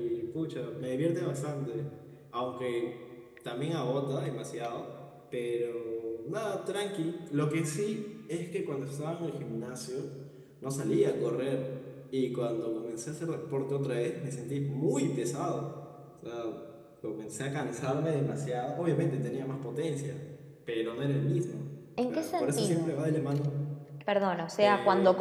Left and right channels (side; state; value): both; identical; correlation 1.00